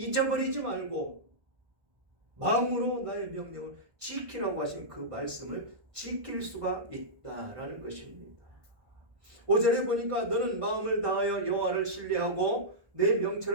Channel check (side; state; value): left; late; 1.5 ms